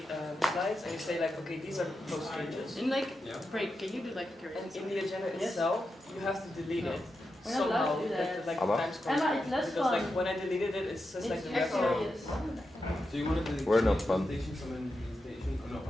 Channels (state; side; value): normal; both; correlation 0.88